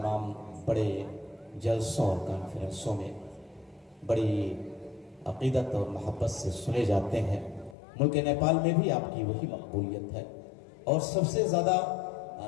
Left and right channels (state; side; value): drops out; right; at 7.8 s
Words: بڑے جلسوں اور کانفرنسوں میں بڑی عقیدت اور محبت سے سنے جاتے ہیں۔ ملک نیپال میں بھی آپ کی وہی مقبولیت ہے، اور سب سے زیادہ